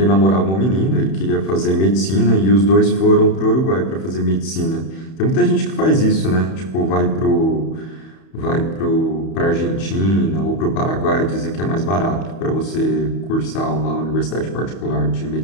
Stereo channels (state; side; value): late; right; 31 ms